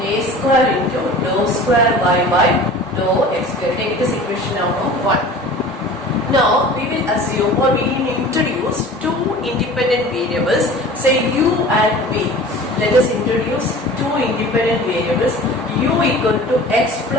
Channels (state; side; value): normal; both; correlation 0.41